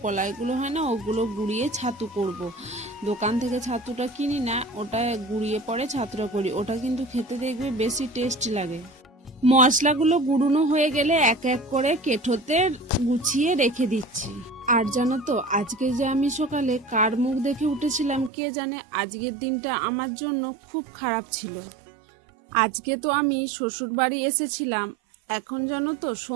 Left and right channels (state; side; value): drops out; left; at 18.3 s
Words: কলাইগুলো হয় না ওগুলো গুঁড়িয়ে ছাতু করব। দোকান থেকে ছাতুটা কিনি না, ওটা গুঁড়িয়ে পরে ছাতুটা করি, ওটা কিন্তু খেতে দেখবে বেশি টেস্টি লাগে। মশলাগুলো গুঁড়োনো হয়ে গেলে এক এক করে কেঠোতে গুছিয়ে রেখে দিচ্ছি। আর জানো তো আজকে যে আমি সকালে কার মুখ দেখে উঠেছিলাম কে জানে, আজকের দিনটা আমার জন্য খুব খারাপ ছিল। আজকে তো আমি শ্বশুর বাড়ি এসেছিলাম, এখন জানো তো